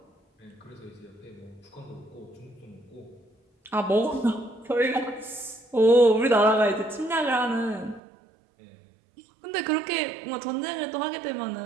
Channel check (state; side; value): drops out; left; at 8.0 s